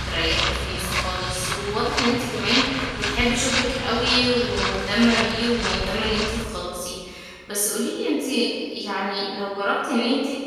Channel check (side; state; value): both; identical; correlation 1.00